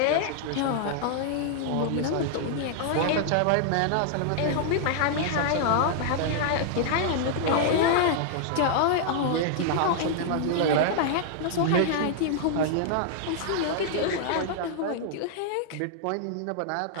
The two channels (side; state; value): both; different; correlation -0.01